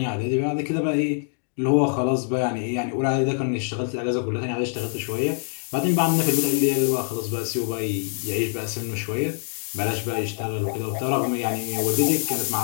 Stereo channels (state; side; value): silent; right; 62 dB below the other